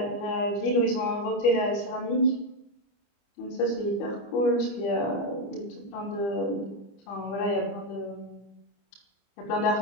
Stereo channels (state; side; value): late; right; 25 ms